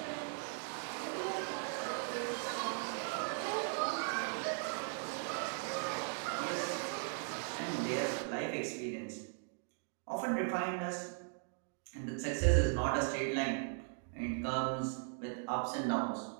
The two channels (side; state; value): left; silent; 52 dB below the other